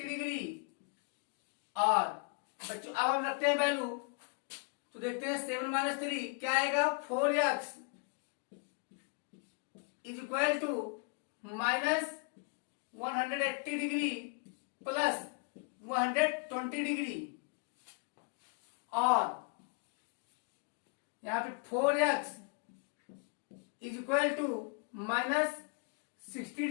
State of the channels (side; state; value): right; quieter; 34.9 dB